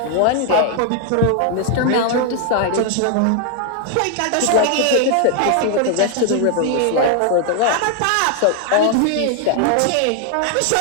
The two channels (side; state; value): both; different; correlation 0.00